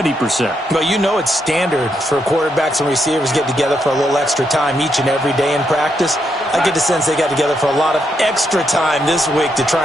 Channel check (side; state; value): both; normal; correlation 0.79